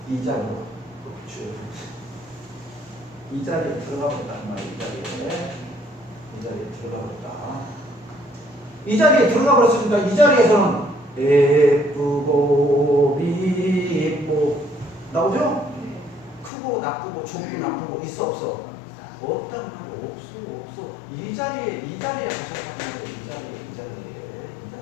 이 자리로, 이 자리에 들어가 버렸다. 이 자리에 들어가 버렸다. 이 자리에 들어가 버렸으니까 이 자리에서는 예쁘고 미쁘고 나오죠? 크고 나쁘고 좋고 나쁘고 있어 없어? 없다고 말이야. 없어. 이 자리에 가셨다고 말이야. 이 자리에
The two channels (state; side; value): drops out; right; at 16.5 s